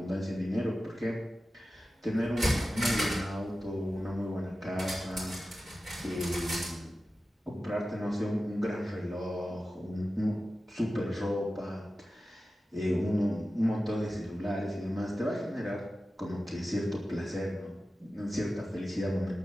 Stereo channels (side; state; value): both; normal; correlation 0.94